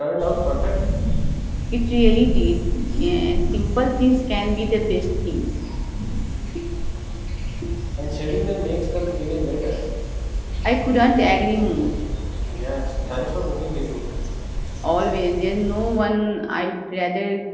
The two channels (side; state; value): both; identical; correlation 1.00